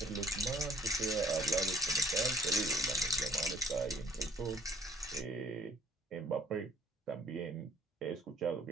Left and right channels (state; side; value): normal; both; correlation 0.57